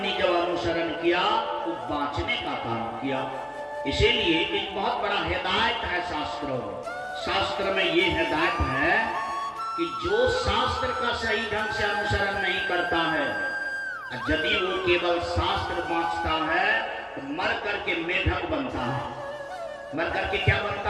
जब अनुसरण किया तो बांचने का काम किया। इसीलिए एक बहुत बड़ा हिदायत है शास्त्रों में। शास्त्र में ये हिदायत है कि जो शास्त्र का सही ढंग से अनुसरण नहीं करता है, यदि वो केवल शास्त्र बांचता है तो मर करके मेढक बनता है। मर करके क्या बनता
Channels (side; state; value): both; identical; correlation 1.00